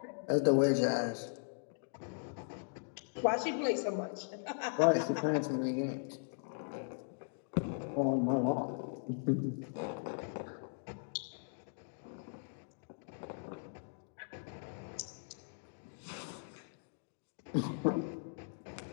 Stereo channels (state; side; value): silent; right; digital silence